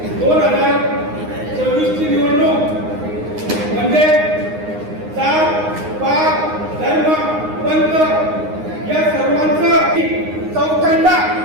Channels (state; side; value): late; left; 9.7 ms